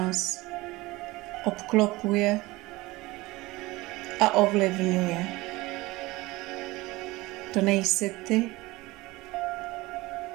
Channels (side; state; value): left; quieter; 20.6 dB